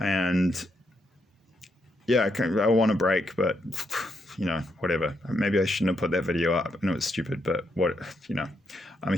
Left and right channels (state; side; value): normal; both; correlation 0.79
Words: yeah, I want a break, but whatever. Maybe I shouldn't have put that video up. I know it's stupid, but I'm a